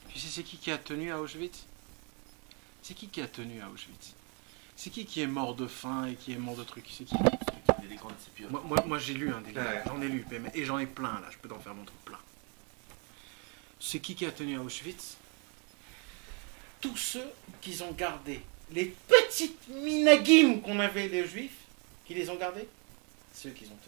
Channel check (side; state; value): left; quieter; 35.2 dB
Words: Tu sais, c'est qui a tenu à Auschwitz? C'est qui a tenu à Auschwitz? C'est qui est mort de faim et qui est mort de trucs? C'est qui? Des grandes sépultures. Moi j'ai lu des livres, Ouais. j'en ai lu, et j'en ai plein là, je peux t'en faire montrer plein. C'est qui a tenu à Auschwitz? Tous ceux qui ont gardé les petites minagim qu'on avait les juifs, qui les ont gardés, c'est eux qui ont